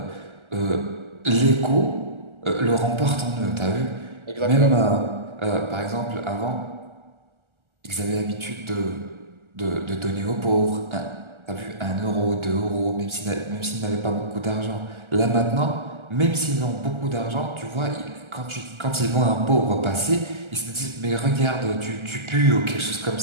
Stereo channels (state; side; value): late; left; 1.3 ms